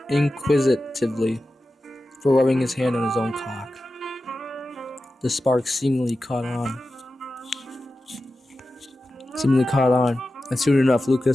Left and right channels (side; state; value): both; normal; correlation 0.93